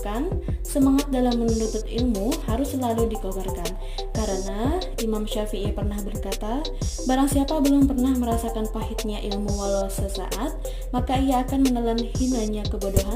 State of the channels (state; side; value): identical; both; correlation 1.00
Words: Semangat dalam menuntut ilmu harus selalu dikobarkan. Karena Imam Syafi'i pernah berkata, barang siapa belum pernah merasakan pahitnya ilmu walau sesaat, maka ia akan menelan hinanya